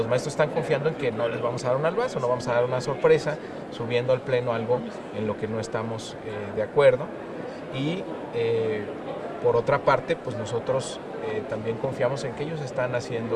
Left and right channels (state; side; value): identical; both; correlation 1.00